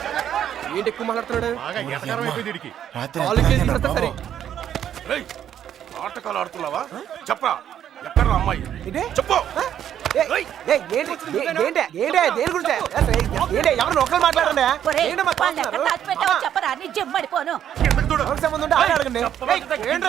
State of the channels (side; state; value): left; quieter; 10.0 dB